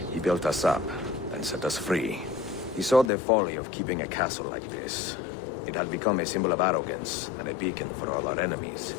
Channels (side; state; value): right; drops out; at 3.1 s